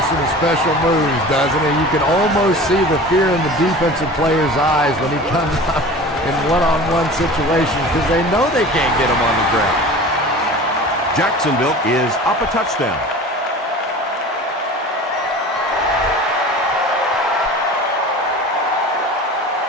some special moves, doesn't he? You can almost see the fear in the defensive player's eyes when he comes up in one-on-one situations because they know they can't get him on the ground. Jacksonville is up a touchdown.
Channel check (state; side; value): normal; both; correlation 0.38